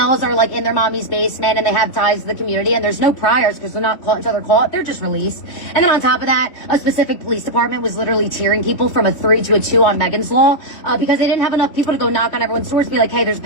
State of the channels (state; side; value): late; right; 3.4 ms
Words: are like in their mommy's basement and they have ties to the community and there's no priors because they're not caught each other caught, they're just released. And then on top of that, a specific police department was literally tearing people from a 3 to a 2 on Megan's Law because they didn't have enough people to go knock on everyone's doors and be like, hey, there's a